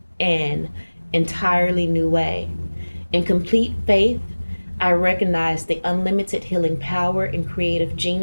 entirely new way. In complete faith, I recognize the unlimited healing power and creative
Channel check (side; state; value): both; inverted; correlation -1.00